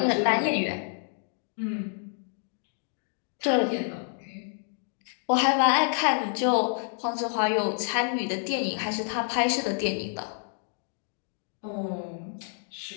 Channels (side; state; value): right; silent; 59 dB below the other